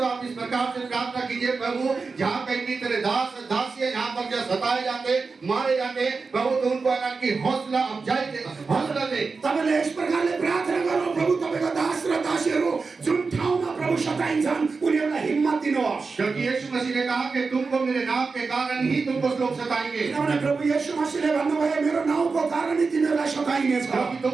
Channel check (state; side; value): quieter; left; 4.5 dB